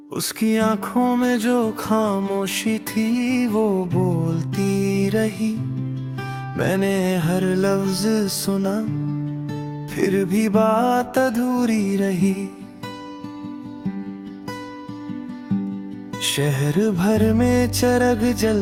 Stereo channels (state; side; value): identical; both; correlation 1.00